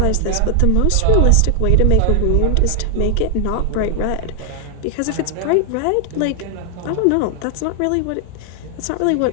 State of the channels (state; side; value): different; both; correlation 0.00